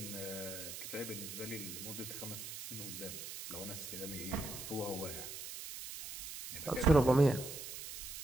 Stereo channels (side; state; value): right; noise; hiss, 8 dB below the sound